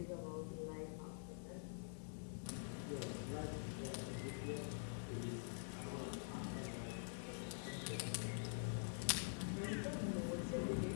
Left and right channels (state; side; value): silent; right; digital silence